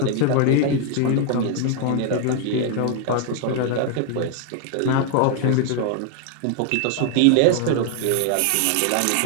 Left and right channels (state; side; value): different; both; correlation 0.00